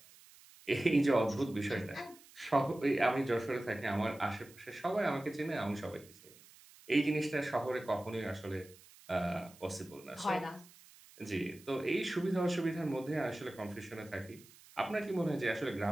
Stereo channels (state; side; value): noise; right; hiss, 23 dB below the sound